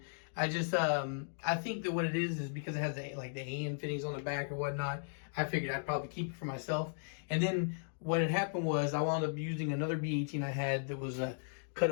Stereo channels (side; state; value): right; silent; digital silence